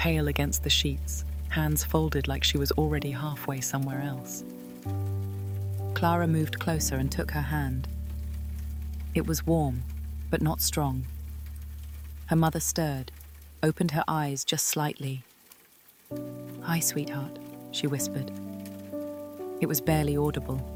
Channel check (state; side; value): identical; both; correlation 1.00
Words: against the sheets, hands folded like she was already halfway somewhere else. Clara moved closer and took her hand. It was warm, but not strong. Her mother stirred, opened her eyes just slightly. "Hi, sweetheart," she whispered. It was barely audible.